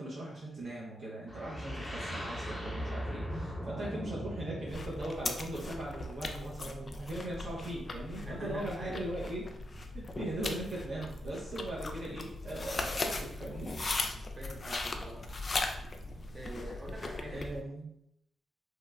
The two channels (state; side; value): normal; both; correlation 0.84